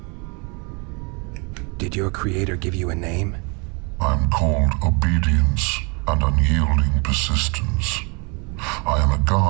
Did your creator give you a name? I'm called obedience and unyielding persistence. I am a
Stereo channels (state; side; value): quieter; left; 31.8 dB